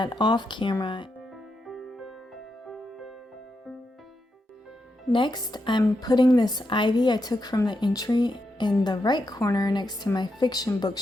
off camera. Next, I'm putting this ivy I took from the entry in the right corner next to my fiction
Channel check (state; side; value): normal; both; correlation 0.84